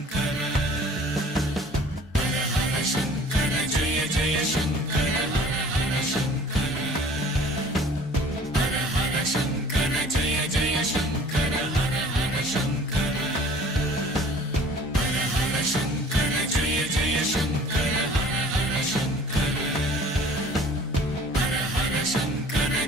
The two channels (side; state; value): both; normal; correlation 0.49